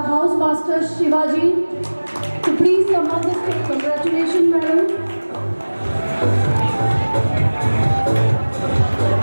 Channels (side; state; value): both; inverted; correlation -1.00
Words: House Master Shivaji to please come on the stage. Congratulations, madam.